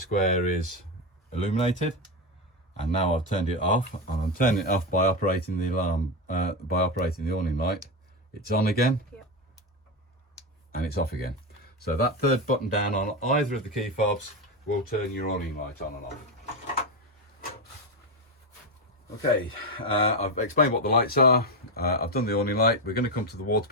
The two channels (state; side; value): normal; both; correlation 0.12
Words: is illuminated. And now I've turned it off, and I'm turning it off by operating the alarm, by operating the awning light. It's on again, yep. And it's off again. So that 3rd button down on either of the key fobs will turn your awning light on and off. Okay, I've explained what the lights are. I've done the awning light. We're going to come to the water